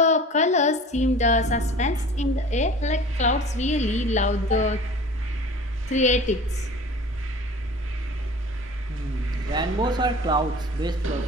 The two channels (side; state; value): both; normal; correlation 0.42